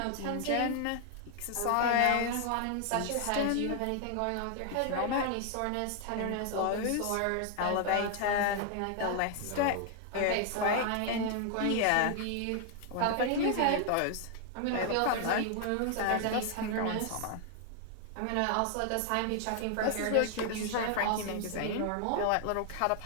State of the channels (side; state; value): both; different; correlation 0.00